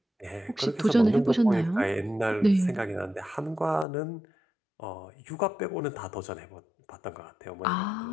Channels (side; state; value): right; drops out; at 3.9 s